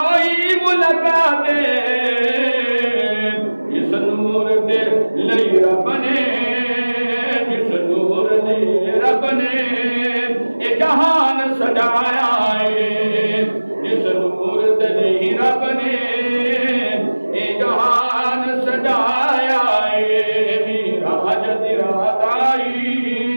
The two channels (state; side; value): inverted; both; correlation -1.00